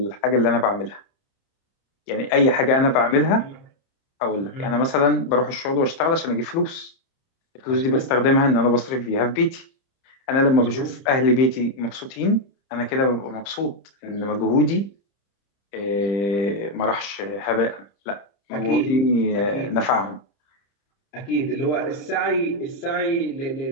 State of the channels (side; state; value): right; late; 30 ms